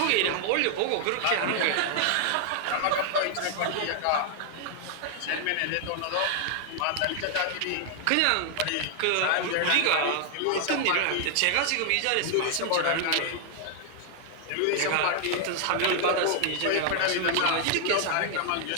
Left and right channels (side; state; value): both; different; correlation 0.00